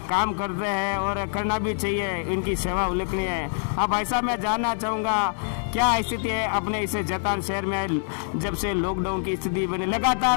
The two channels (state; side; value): silent; right; digital silence